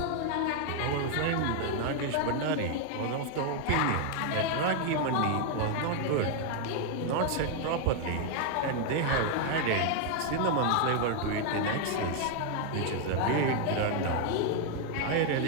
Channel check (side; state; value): both; different; correlation 0.00